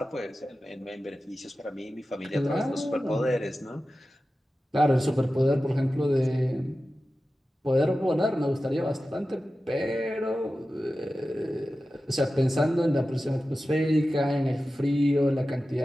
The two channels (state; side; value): normal; both; correlation 0.94